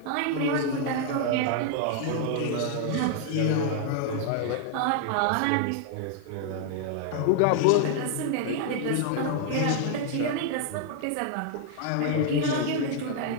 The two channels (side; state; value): both; different; correlation 0.00